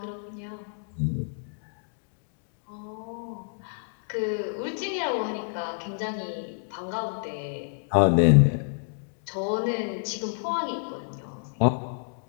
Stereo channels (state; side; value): silent; right; digital silence